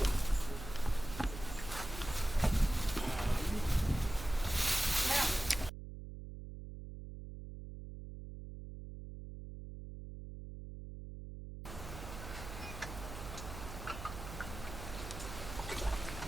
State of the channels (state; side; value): noise; right; hum, 10 dB below the sound